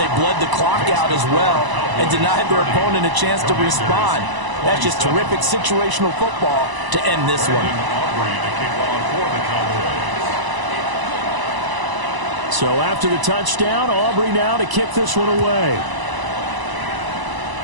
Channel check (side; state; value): left; late; 1.0 ms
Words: bled the clock out as well and denied their opponent a chance to respond. That's just terrific situational football to end this one. So after the touchdown, Aubrey now to kick this one away.